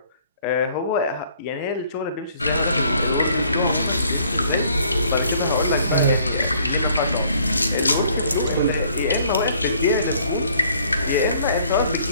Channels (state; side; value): inverted; both; correlation -0.61